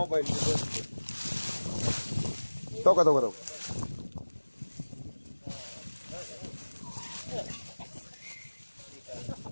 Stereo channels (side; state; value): both; inverted; correlation -1.00